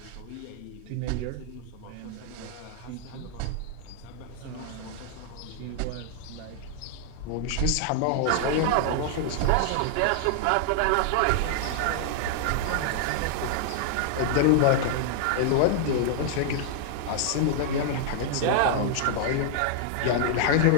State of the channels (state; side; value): different; both; correlation 0.00